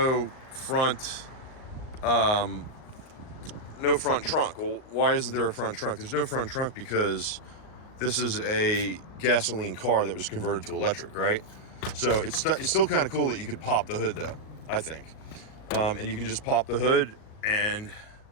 front trunk. Well, why isn't there a front trunk? There's no front trunk because this is a gasoline car that was converted to electric, right? So it's still kind of cool that you could pop the hood, though, I think. And you can just pop the hood, and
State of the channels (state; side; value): late; right; 38 ms